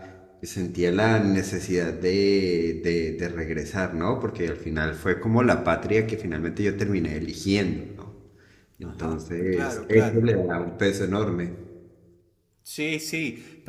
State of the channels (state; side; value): identical; both; correlation 1.00